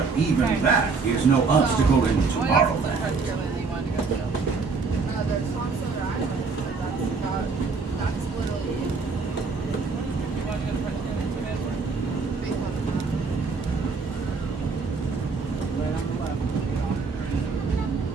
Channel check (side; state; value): left; quieter; 4.5 dB